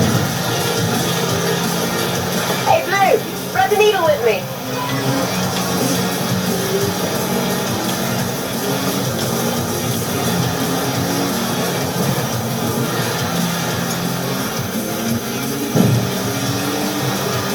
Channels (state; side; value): identical; both; correlation 1.00